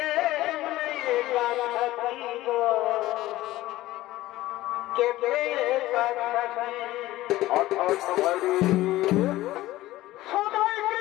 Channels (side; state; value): right; quieter; 16.5 dB